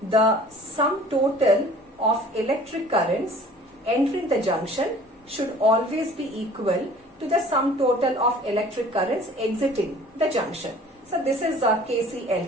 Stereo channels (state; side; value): normal; both; correlation 0.49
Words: the sum total of electric currents entering the junction should always be equal to the sum total of electric currents exiting the junction. So this is